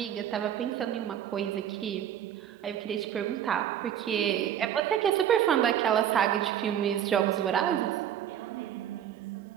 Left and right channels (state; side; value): quieter; left; 10.1 dB